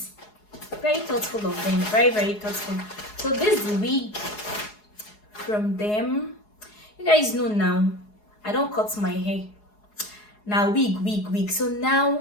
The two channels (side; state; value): right; late; 4.8 ms